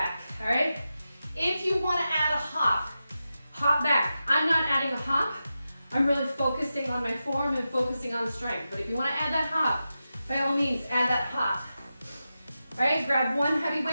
all right? If you wanna add a hop, hop back. I'm not adding a hop. I'm really focusing on my form and focusing on strength. But if you wanna add that hop, by all means, add that hop. All right, grab one heavy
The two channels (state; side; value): inverted; both; correlation -0.91